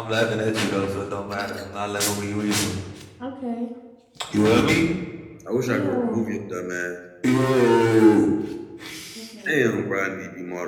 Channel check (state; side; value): identical; both; correlation 1.00